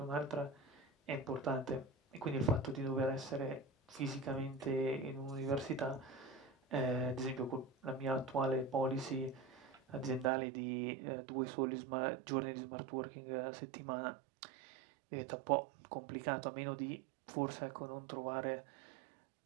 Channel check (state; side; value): drops out; left; at 10.3 s